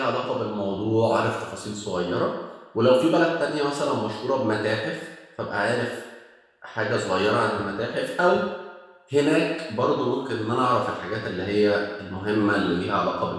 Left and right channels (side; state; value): both; identical; correlation 1.00